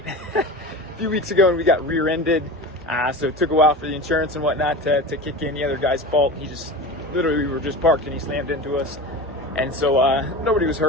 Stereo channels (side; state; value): both; normal; correlation 0.30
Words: a few weeks ago and we got rear-ended. So it took a while for the insurance and whatnot to kick in. The other guy's fault. He just, literally, we were just parked and he slammed into us. And so nobody was